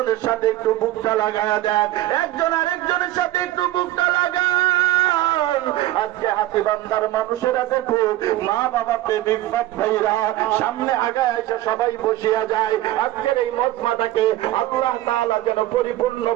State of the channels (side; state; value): left; quieter; 15.2 dB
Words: সাথে একটু বুকটা লাগায়া দেন, একজন আরেকজনের সাথে একটু বুকটা লাগান। আজকে হাতীবান্ধার মানুষেরা দেখো, মা বাবা প্রেমিক বাপ ভাইরা সামনে আগায় এসে সবাই বসিয়া যায়। আজকের এই মজমাটাকে আল্লাহ তাআলা যেন